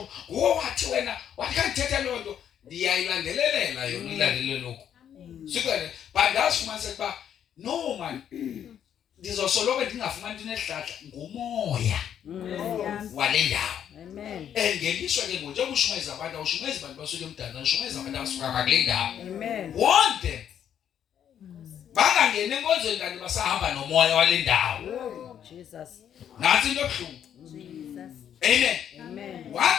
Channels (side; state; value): right; quieter; 9.4 dB